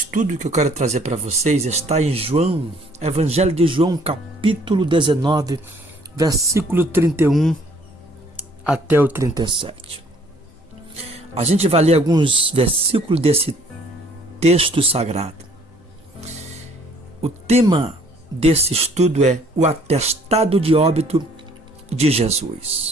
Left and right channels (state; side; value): normal; both; correlation 0.59